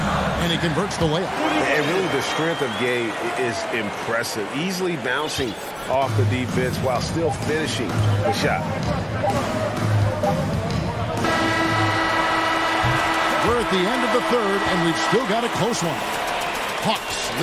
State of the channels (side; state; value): both; identical; correlation 1.00